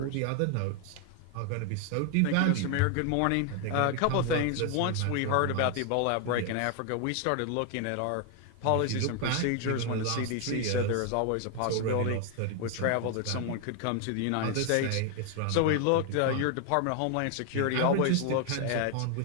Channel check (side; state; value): both; different; correlation 0.00